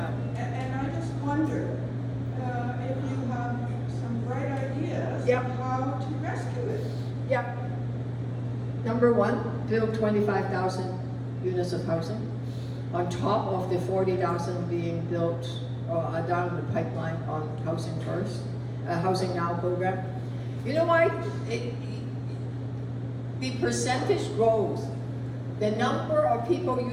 And I just wonder if you have some bright ideas Yep. of how to rescue it. Yep. Number one, build 25,000 units of housing on top of the 40,000 being built down the pipeline on Housing First, Housing Now program. You know why? The percentage growth, the number of people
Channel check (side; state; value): both; identical; correlation 1.00